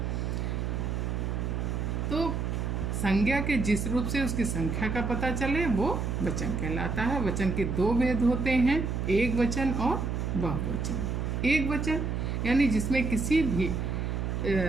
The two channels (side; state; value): right; noise; hum, 1 dB below the sound